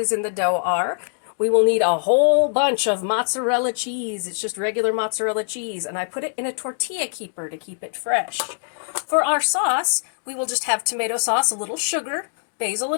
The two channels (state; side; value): silent; right; digital silence